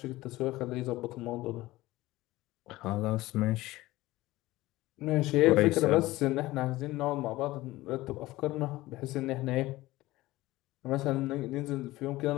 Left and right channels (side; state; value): right; quieter; 18.1 dB